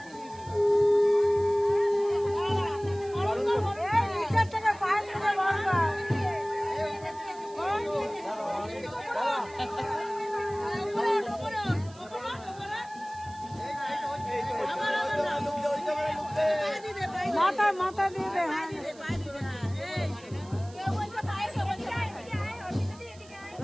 মাথা মাথা দিয়ে দে।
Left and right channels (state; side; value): noise; right; hiss, 23 dB below the sound